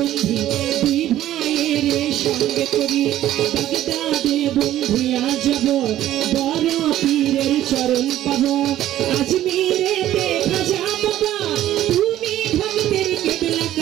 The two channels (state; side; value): quieter; left; 13.1 dB